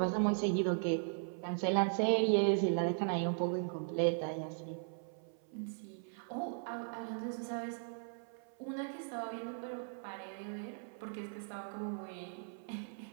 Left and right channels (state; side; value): silent; left; 52 dB below the other